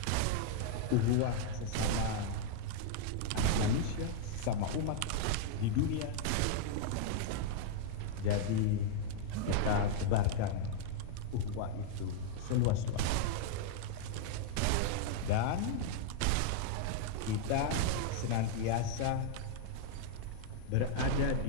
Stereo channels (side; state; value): both; different; correlation 0.00